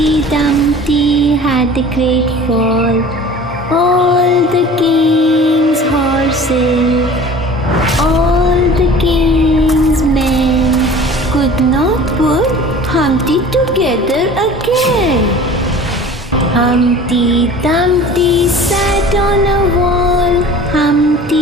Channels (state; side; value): normal; both; correlation 0.42